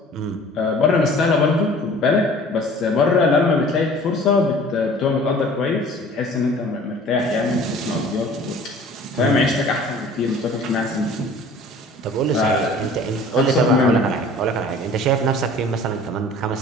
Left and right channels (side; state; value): both; normal; correlation 0.47